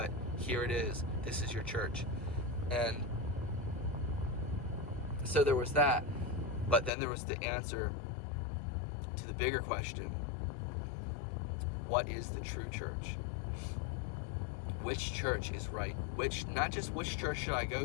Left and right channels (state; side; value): drops out; right; at 6.9 s